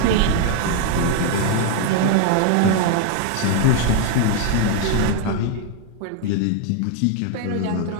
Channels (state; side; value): different; both; correlation 0.01